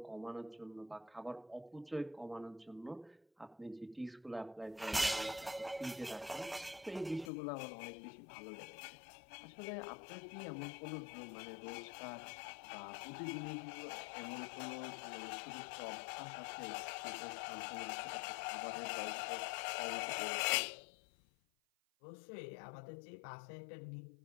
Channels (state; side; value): drops out; right; at 7.3 s